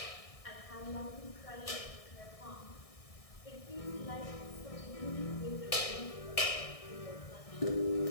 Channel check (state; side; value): late; right; 1.6 ms